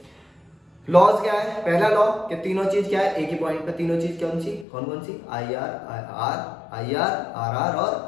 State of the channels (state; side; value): drops out; right; at 4.7 s